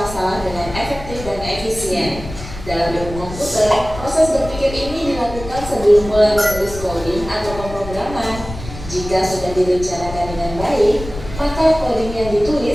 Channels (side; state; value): left; noise; rumble, 12 dB below the sound